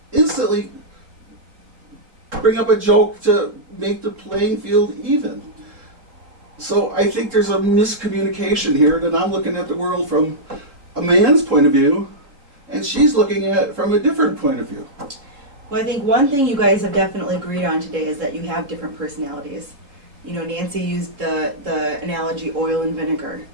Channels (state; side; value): late; left; 3.7 ms